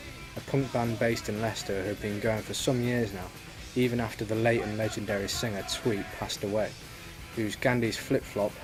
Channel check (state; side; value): identical; both; correlation 1.00